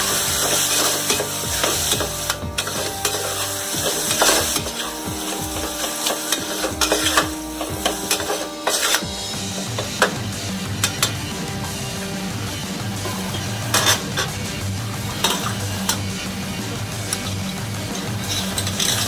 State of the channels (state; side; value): identical; both; correlation 1.00